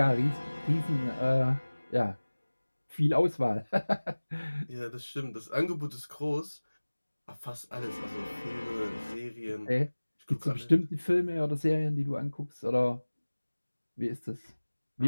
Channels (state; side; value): inverted; both; correlation -1.00